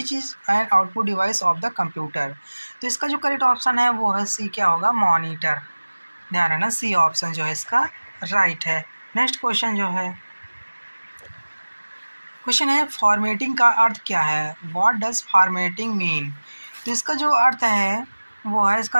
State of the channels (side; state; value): both; inverted; correlation -1.00